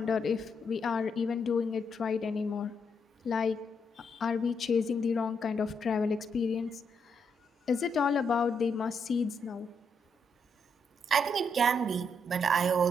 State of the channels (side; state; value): both; normal; correlation 0.78